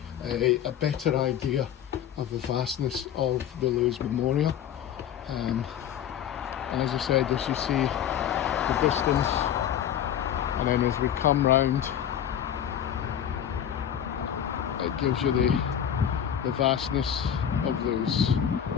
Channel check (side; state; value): right; quieter; 9.6 dB